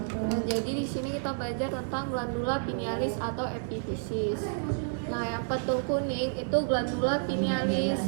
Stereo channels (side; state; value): left; silent; digital silence